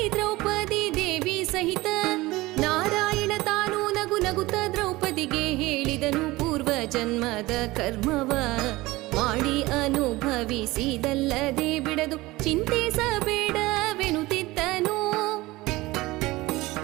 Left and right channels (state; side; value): quieter; left; 20.0 dB